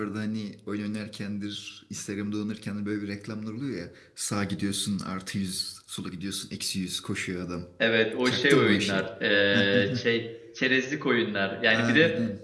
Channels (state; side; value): identical; both; correlation 1.00